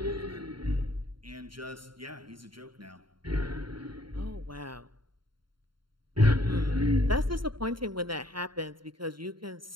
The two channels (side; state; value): left; late; 0.73 ms